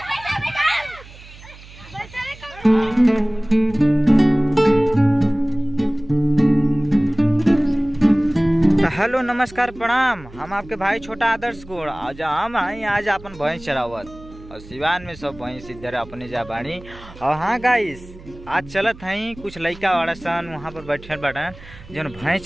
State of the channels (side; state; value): right; noise; hum, 19 dB below the sound